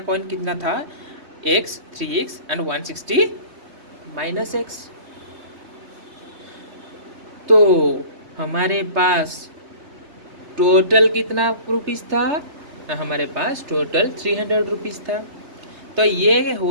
कितना था? x, 3x and 160 minus x। तो हमारे पास टोटल कितना रुपीस था? हमारे पास टोटल ₹300 था। तो ये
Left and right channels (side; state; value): left; late; 3.3 ms